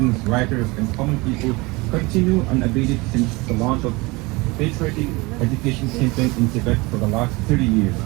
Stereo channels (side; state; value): left; quieter; 24.2 dB